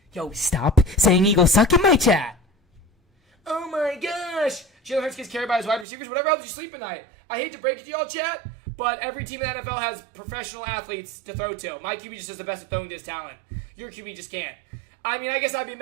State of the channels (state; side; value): drops out; left; at 5.9 s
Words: Yo, stop saying Eagles suck in my chat. Oh my gosh. Jalen Hurts gets carried by his wide receivers. Whatever helps you sleep at night. I hate to break it to y'all, chat, but every team in the NFL has professional athletes to throw to. My QB just is the best at throwing to his talent. Your QB just can't. I mean, I guess I'd be